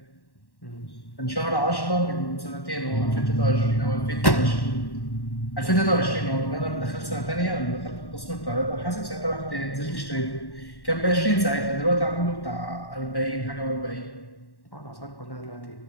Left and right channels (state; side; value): late; right; 1.1 ms